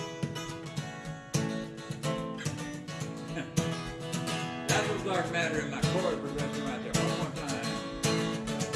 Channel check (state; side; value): identical; both; correlation 1.00